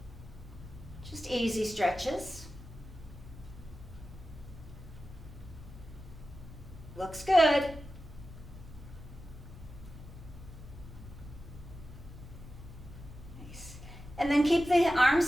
Just easy stretches. Looks good. Nice. And then keep the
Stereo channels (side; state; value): both; normal; correlation 0.94